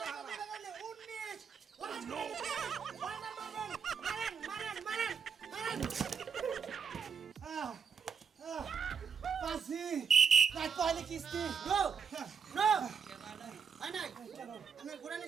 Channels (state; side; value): quieter; left; 6.3 dB